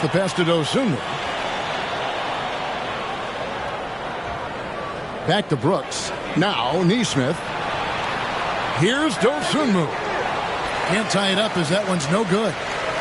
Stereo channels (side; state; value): both; identical; correlation 1.00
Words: pass to Dosunmu. Back to Brooks. Now Nesmith. Here's Dosunmu. Can't tie it up as that one's no good.